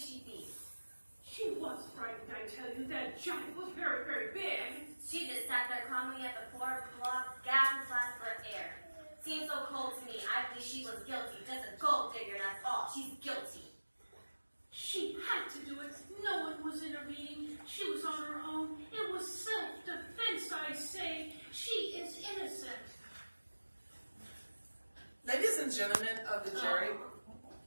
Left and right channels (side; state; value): both; inverted; correlation -1.00